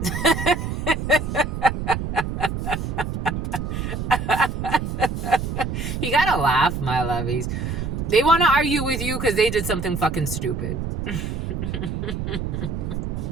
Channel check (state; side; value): noise; right; rumble, 3 dB below the sound